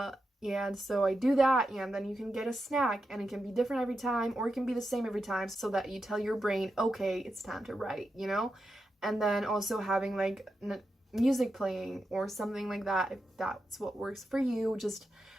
And so I do that, and then you can get a snack, and it can be different every time, or it can be the same every time, so that you tell your brain, okay, it's time to write, you know? And then also having like music playing or something like that, if that's what works for you. Just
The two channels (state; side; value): normal; both; correlation 0.88